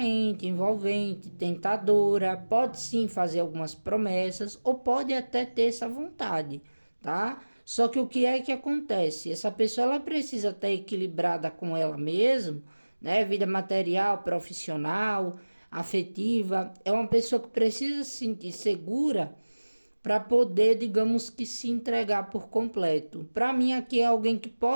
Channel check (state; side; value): inverted; both; correlation -1.00